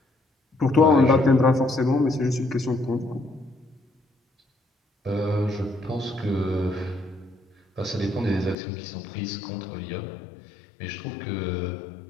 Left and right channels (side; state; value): right; drops out; at 8.6 s